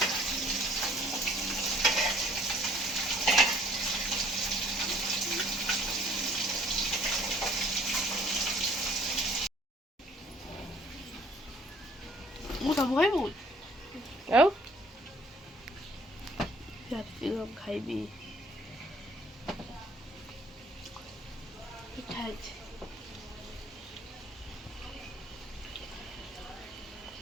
ମୁଁ ସବୁ ଖାଇବୁ ଆଉ କ୍ୟାପ୍ସିକମ୍ ଖାଇବି। ପିଠା ହେଇଛି।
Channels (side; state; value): both; normal; correlation 0.57